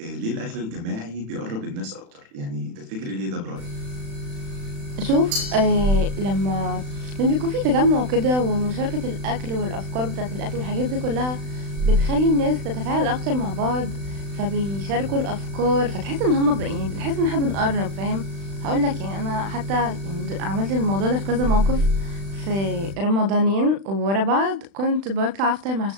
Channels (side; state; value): left; late; 36 ms